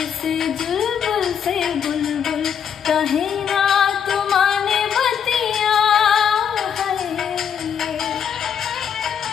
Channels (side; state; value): right; quieter; 8.0 dB